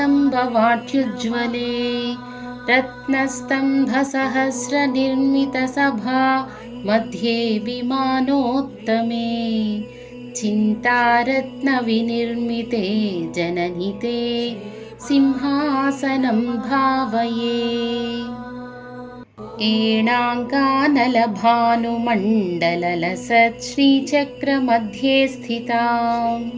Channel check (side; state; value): both; identical; correlation 1.00